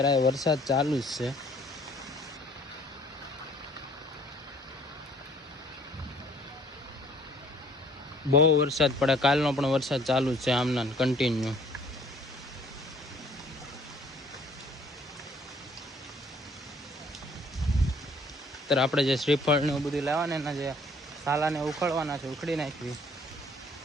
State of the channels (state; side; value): normal; both; correlation 0.57